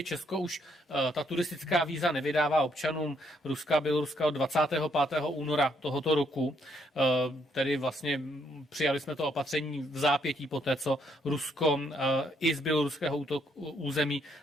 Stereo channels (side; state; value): both; normal; correlation 0.72